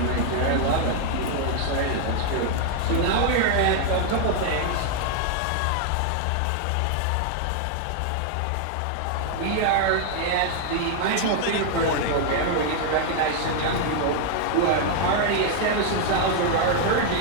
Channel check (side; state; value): both; different; correlation 0.00